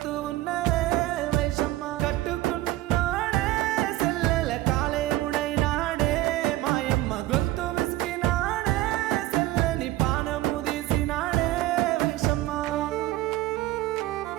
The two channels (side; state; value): left; quieter; 16.4 dB